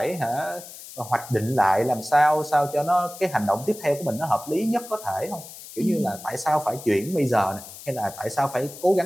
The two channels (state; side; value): noise; left; hiss, 15 dB below the sound